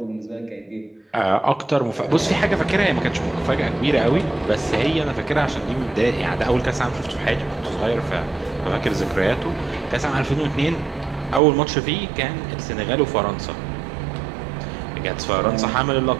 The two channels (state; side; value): drops out; left; at 11.4 s